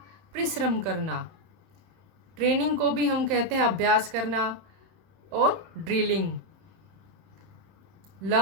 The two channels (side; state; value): left; late; 31 ms